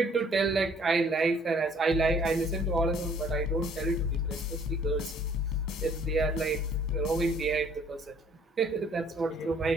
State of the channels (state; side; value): normal; both; correlation 0.59